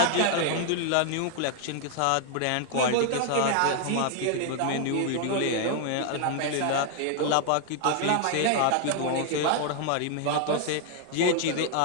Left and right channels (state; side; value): different; both; correlation 0.00